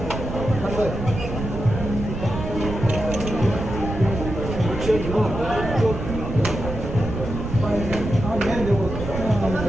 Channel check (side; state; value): right; noise; rumble, 6 dB below the sound